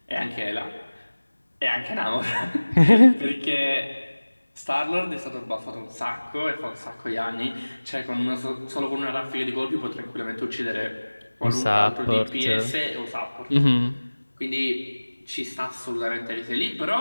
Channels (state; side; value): inverted; both; correlation -1.00